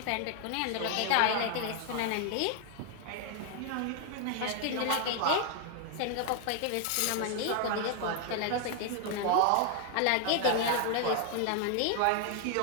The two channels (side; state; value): both; different; correlation 0.00